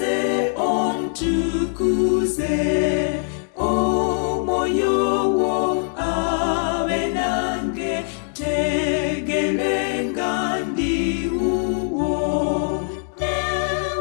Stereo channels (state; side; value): silent; right; digital silence